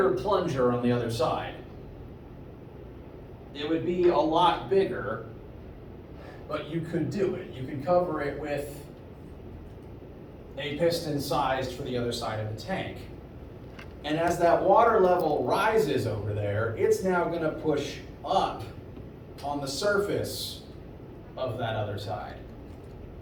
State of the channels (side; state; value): both; identical; correlation 1.00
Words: plunger on the other side. It would be a lot bigger, but you could do it. You could cover it with a piston sized for the other side of the tank. And as that water level rises over there, it's now going to push up on the surface of that other side.